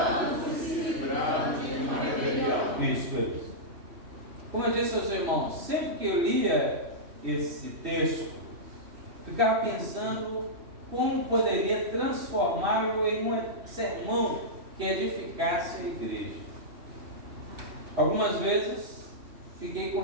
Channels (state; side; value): late; left; 3.1 ms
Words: e se livrando de uma rebelião. Isso. Como eu disse aos irmãos, sempre que eu lia esse texto, ficava pensando como poderia transformá-lo em um sermão que edificasse a igreja. Algumas vezes fiquei com